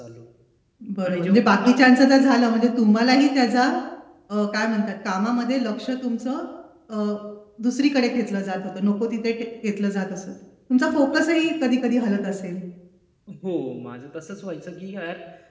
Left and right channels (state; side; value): identical; both; correlation 1.00